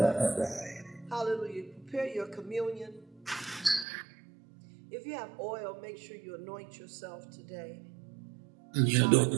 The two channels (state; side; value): drops out; left; at 3.9 s